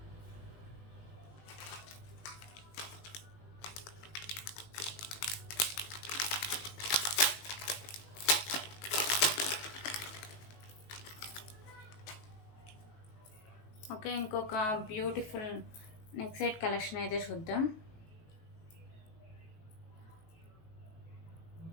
Okay, ఇంకొక బ్యూటిఫుల్ నెక్ సెట్ కలెక్షన్ అయితే చూద్దాం.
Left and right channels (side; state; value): right; late; 19 ms